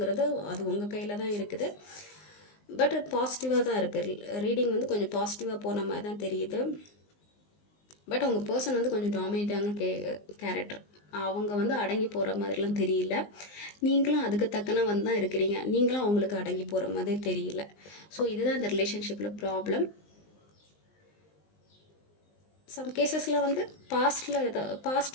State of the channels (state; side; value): late; right; 19 ms